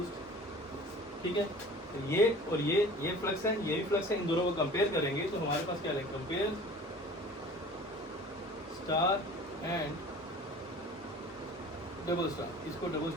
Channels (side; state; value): both; normal; correlation 0.44